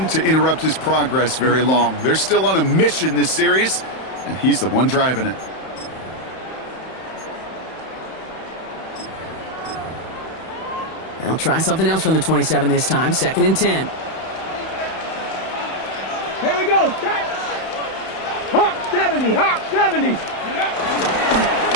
to interrupt his progress very long. They're still on a mission this series, and he's the one driving it. They'll try something else from the 27 this time. 2nd and 10. Here we go. Hawk 70, Hawk 70.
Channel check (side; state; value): right; late; 31 ms